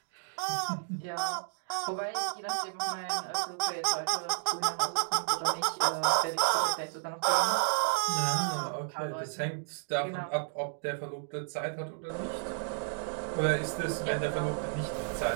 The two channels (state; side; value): silent; left; digital silence